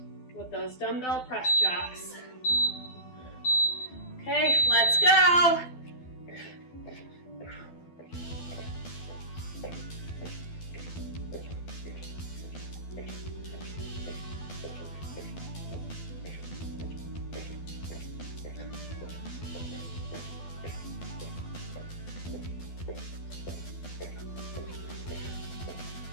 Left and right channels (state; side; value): late; right; 12 ms